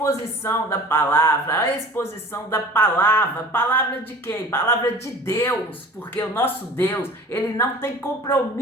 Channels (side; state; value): both; normal; correlation 0.43